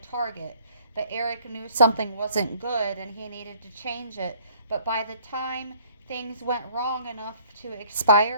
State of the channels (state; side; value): inverted; both; correlation -0.57